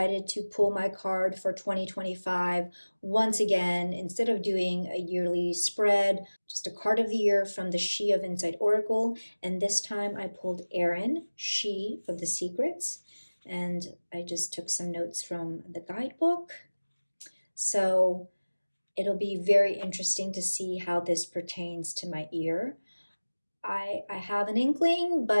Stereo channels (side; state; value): both; inverted; correlation -1.00